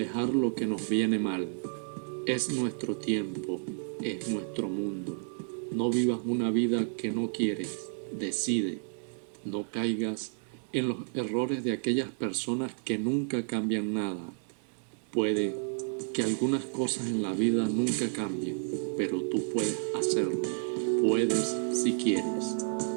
lo que nos viene mal. Es nuestro tiempo, es nuestro mundo. No vivas una vida que no quieres. Decide. No caigas en los errores de aquellas personas que nunca cambian nada. Puede que algunas cosas en la vida nunca cambien, pero tú puedes hacerlo. Puedes si quieres.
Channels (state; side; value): silent; left; digital silence